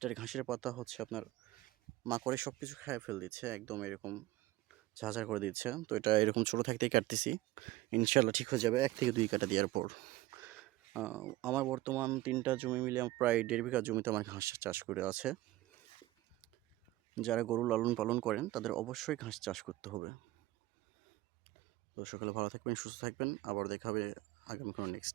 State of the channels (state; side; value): quieter; left; 17.4 dB